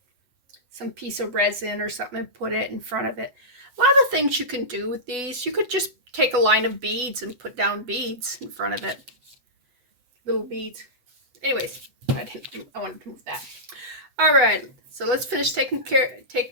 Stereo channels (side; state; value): left; late; 8.1 ms